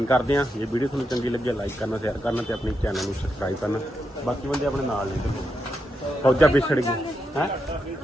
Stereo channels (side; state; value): both; normal; correlation 0.84